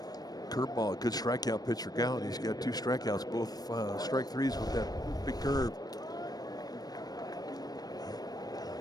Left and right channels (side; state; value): right; late; 0.19 ms